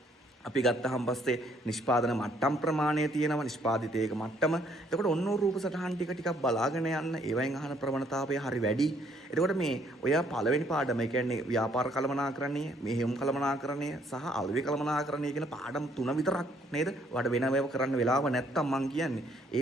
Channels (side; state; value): both; normal; correlation 0.66